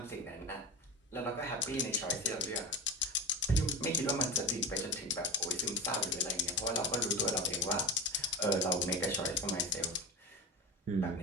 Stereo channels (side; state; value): both; normal; correlation 0.24